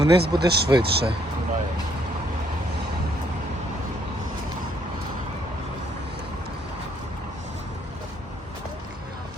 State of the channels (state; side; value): normal; both; correlation 0.68